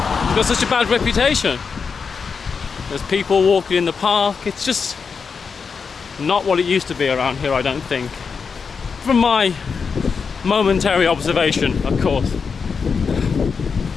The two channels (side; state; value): right; quieter; 5.6 dB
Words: got such a bad reputation. There's people walking in the park. It's just not what it used to be around here, I don't think. From my momentary observation, of course.